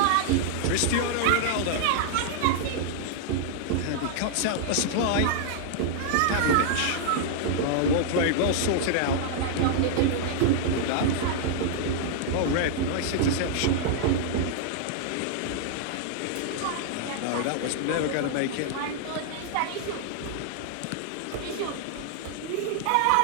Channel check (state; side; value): different; both; correlation -0.01